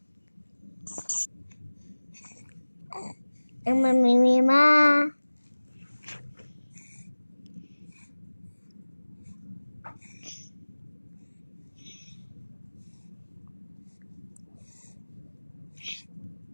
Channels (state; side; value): inverted; both; correlation -1.00